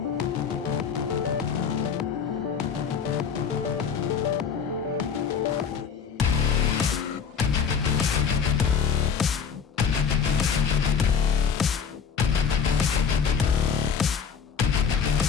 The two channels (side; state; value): right; quieter; 6.6 dB